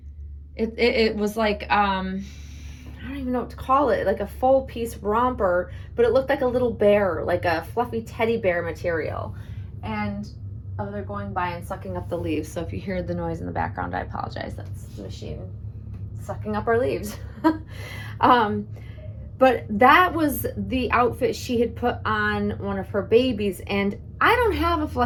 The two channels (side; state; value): both; identical; correlation 1.00